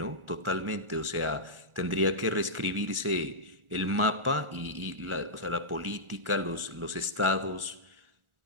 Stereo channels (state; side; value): late; left; 1.4 ms